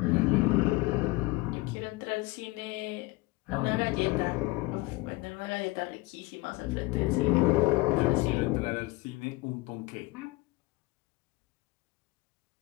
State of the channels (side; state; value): right; quieter; 21.4 dB